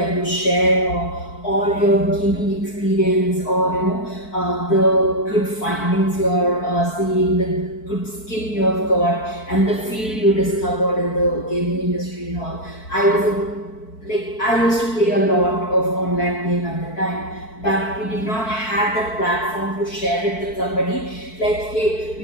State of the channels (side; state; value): right; late; 4.6 ms